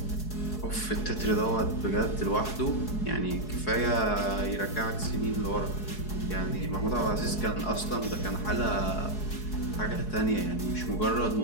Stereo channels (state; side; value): late; right; 4.7 ms